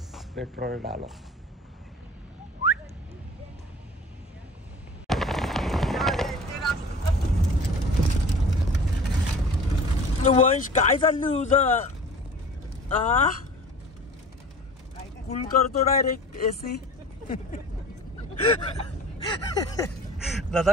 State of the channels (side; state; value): both; normal; correlation 0.41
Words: पेट्रोल डालो. वंश काय चाललं तुझं? कूल करतो डायरेक्ट एसी.